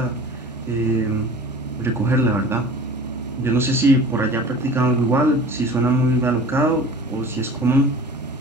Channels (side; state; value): both; normal; correlation 0.41